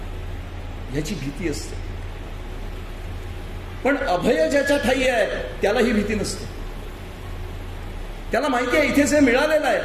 ह्याची भीती असते. पण अभय ज्याच्या ठाई आहे त्याला ही भीती नसते. त्याला माहिती आहे इथे जे मिळालेलं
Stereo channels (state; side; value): identical; both; correlation 1.00